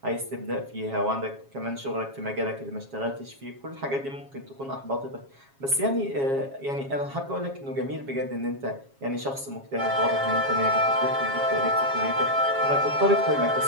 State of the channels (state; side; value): late; left; 7.3 ms